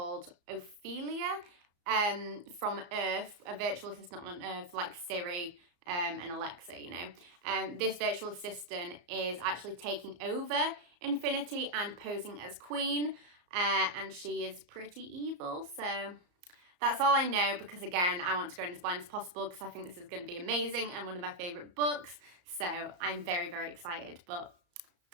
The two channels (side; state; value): left; late; 34 ms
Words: Ophelia from Earth, a virtual assistant on Earth like Siri and Alexa, you know, this virtual assistant is actually taking over Infinity and posing as queen, and she is pretty evil. So that's all I know, because again, I want to go in as blind as possible because I think this is going to be amazing and one of my favorite books. So I'm very, very excited. But